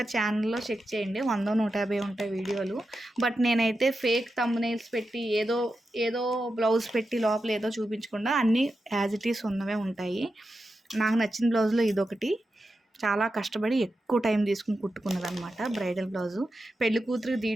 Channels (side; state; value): both; normal; correlation 0.90